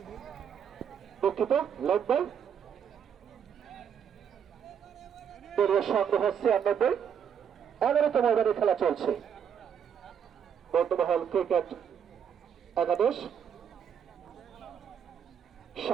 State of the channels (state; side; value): quieter; left; 8.0 dB